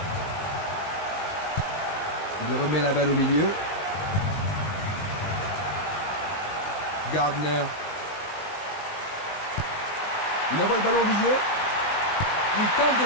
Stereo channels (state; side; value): late; right; 19 ms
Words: Il remet la balle au milieu. Gardner. Il envoie le ballon au milieu. Il tente de